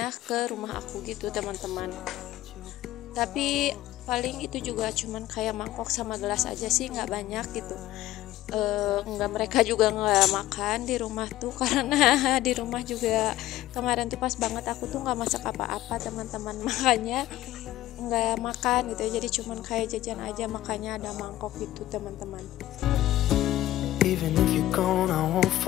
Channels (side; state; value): right; quieter; 14.9 dB